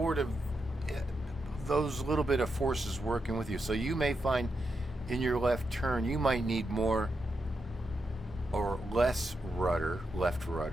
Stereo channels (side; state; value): both; normal; correlation 0.85